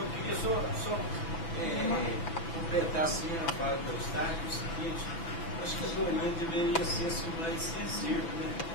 queria só completar assim a fala do Eustáquio, o seguinte, acho que a Dorinha deveria ser assim, mais sensível, né?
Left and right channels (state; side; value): late; right; 6.0 ms